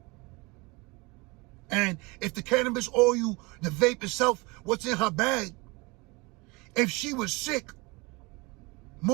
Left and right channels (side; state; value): left; quieter; 25.8 dB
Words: And if the cannabis oil, the vape itself, what's in her bag, if she was sick,